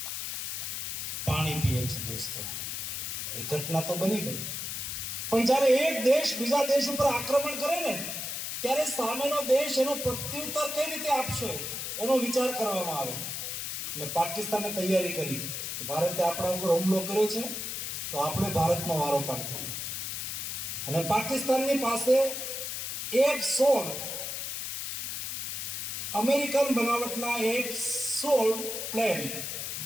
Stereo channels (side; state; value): left; noise; hiss, 4 dB below the sound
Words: પાણી પીવે છે. દોસ્તો, એ ઘટના તો બની ગઈ, પણ જ્યારે એક દેશ બીજા દેશ ઉપર આક્રમણ કરે ને, ત્યારે સામેનો દેશ એનો પ્રત્યુત્તર કઈ રીતે આપશે એનો વિચાર કરવામાં આવે. એટલે પાકિસ્તાને તૈયારી કરી કે ભારતે આપણા ઉપર હુમલો કર્યો છે તો આપણે ભારતનો વારો પાડી દઈએ. અને પાકિસ્તાનની પાસે F-16 અમેરિકન બનાવટના F-16 પ્લેન,